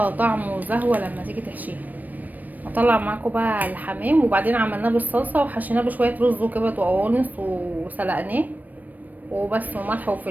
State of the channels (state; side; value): late; left; 0.083 ms